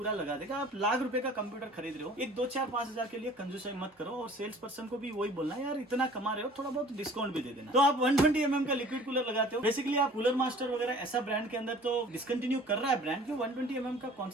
लगा देगा। आप लाख रुपए का कंप्यूटर खरीद रहे हो, एक 2-4-5 हजार के लिए कंजूसाई मत करो, और सेल्स पर्सन को भी वही बोलना है यार इतना कमा रहे हो, थोड़ा बहुत डिस्काउंट भी दे देना। तो आप 120 mm का लिक्विड कूलर लगाते हो। बेसिकली आप कूलर मास्टर वगैरह ऐसा ब्रांड के अंदर तो डिसकंटिन्यू कर रहा है ब्रांड, क्यों 120 mm का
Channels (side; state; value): both; normal; correlation 0.49